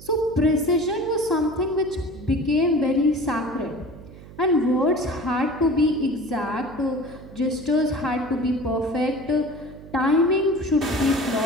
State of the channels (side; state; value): right; noise; hum, 18 dB below the sound